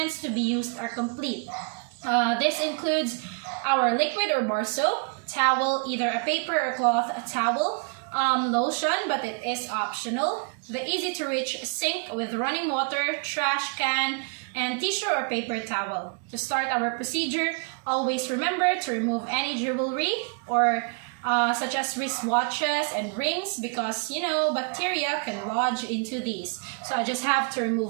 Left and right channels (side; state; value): left; quieter; 35.8 dB